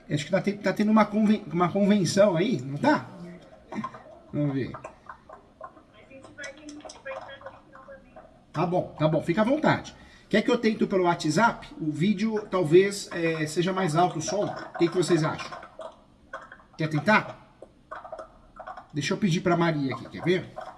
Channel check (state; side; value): identical; both; correlation 1.00